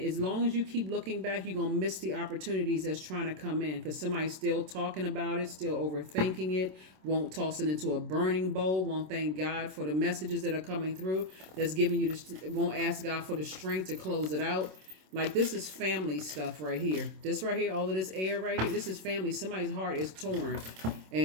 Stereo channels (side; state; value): left; late; 27 ms